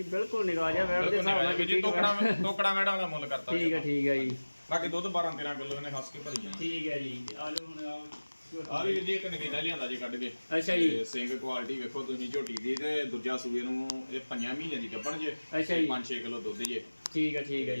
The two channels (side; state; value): both; inverted; correlation -1.00